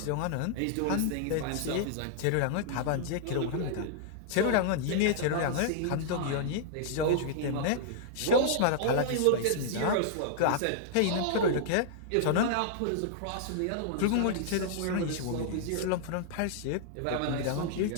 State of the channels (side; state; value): both; different; correlation -0.01